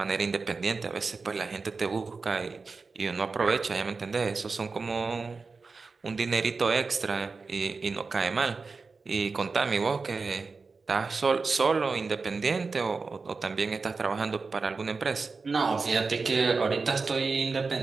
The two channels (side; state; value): left; quieter; 4.3 dB